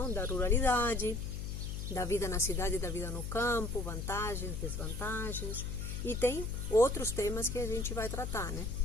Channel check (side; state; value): left; noise; hum, 5 dB below the sound